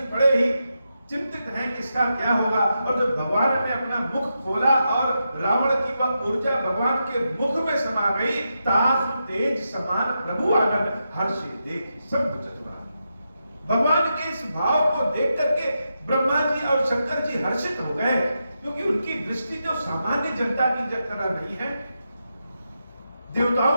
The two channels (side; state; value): both; inverted; correlation -0.86